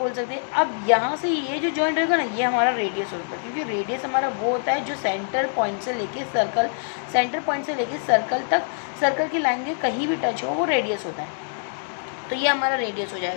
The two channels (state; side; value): silent; right; digital silence